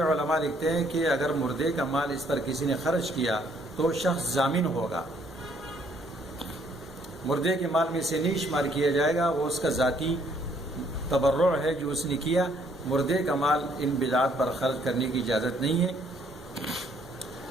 علماء لکھتے ہیں کہ اگر مردے کا مال اس پر کسی نے خرچ کیا تو شخص ضامن ہوگا، مردے کے مال میں سے نہیں شمار کیا جائے گا، وہ اس کا ذاتی تبرع ہے جو اس نے کیا، مردے کا مال ان بدعات پر خرچ کرنے کی اجازت نہیں ہے۔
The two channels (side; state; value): both; normal; correlation 0.66